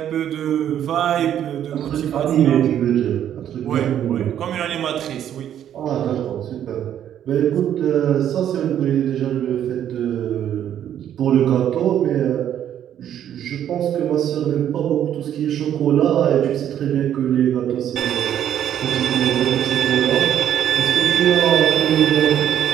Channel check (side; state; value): left; quieter; 10.3 dB